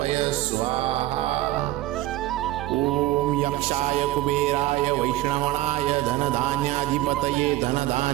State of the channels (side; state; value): left; quieter; 15.7 dB